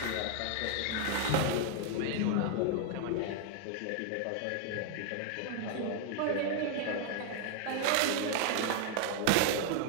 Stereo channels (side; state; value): both; different; correlation 0.00